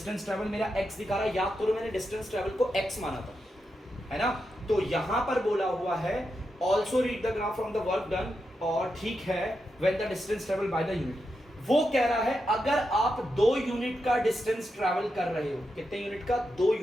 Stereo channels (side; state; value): both; normal; correlation 0.86